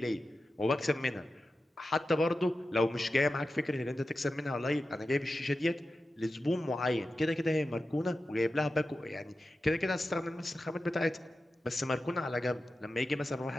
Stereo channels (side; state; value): both; normal; correlation 0.92